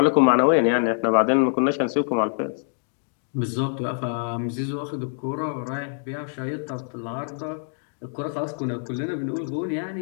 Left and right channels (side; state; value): right; silent; digital silence